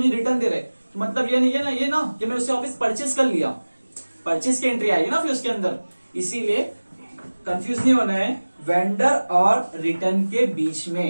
रिटर्न दे रहे, तो मतलब ये नहीं है ना, ये ना कि मैंने उससे वापस परचेज कर लिया, परचेज की एंट्री आएगी ना फिर उसके अंदर। इसीलिए कंफ्यूज नहीं होना है वेंडर और रिटर्न के बीच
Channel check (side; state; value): both; inverted; correlation -1.00